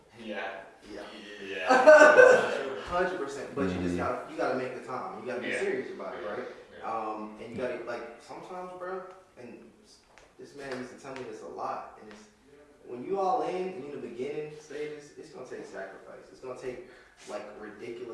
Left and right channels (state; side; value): identical; both; correlation 1.00